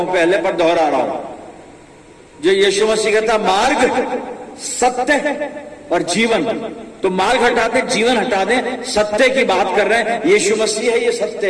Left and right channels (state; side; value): identical; both; correlation 1.00